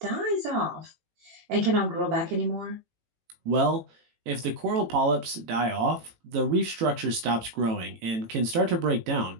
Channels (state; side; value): late; left; 18 ms